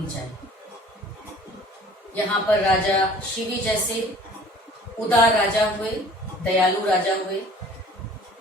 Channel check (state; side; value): normal; both; correlation 0.50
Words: चाहिए। यहाँ पर राजा शिवी जैसे उदार राजा हुए, दयालु राजा हुए,